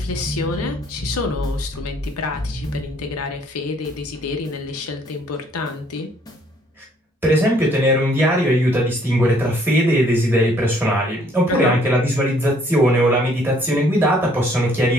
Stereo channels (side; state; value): both; normal; correlation 0.63